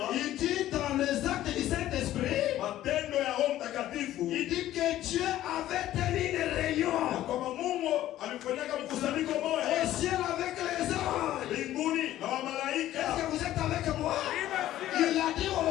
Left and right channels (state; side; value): quieter; right; 13.6 dB